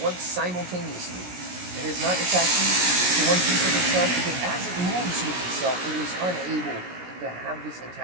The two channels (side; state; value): left; late; 17 ms